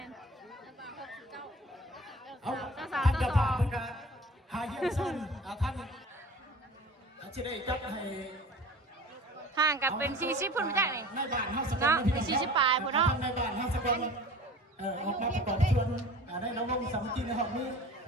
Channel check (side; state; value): both; normal; correlation 0.41